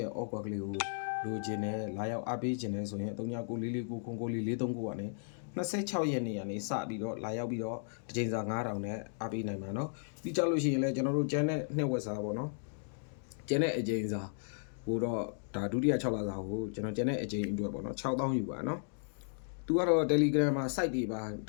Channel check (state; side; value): silent; right; digital silence